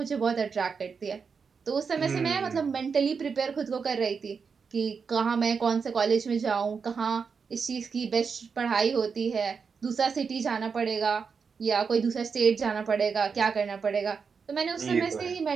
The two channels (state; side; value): quieter; left; 5.7 dB